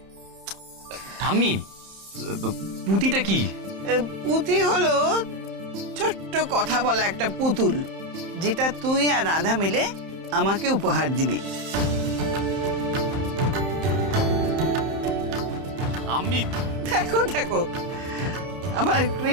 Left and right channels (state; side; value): late; left; 31 ms